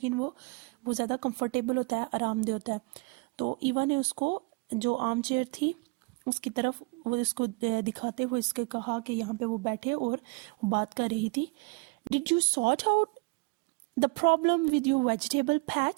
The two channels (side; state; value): left; quieter; 27.4 dB